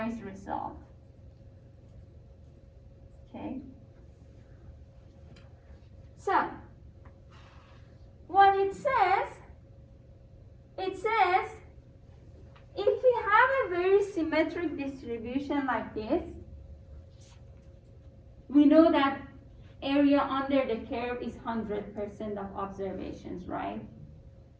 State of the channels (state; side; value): identical; both; correlation 1.00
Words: result. Okay? So, what it says, if we have a very similar symmetric distribution like this, we know that area under the curve is 100% of observations, right?